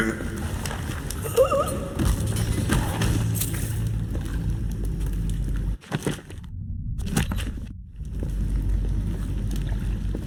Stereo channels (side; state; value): both; identical; correlation 1.00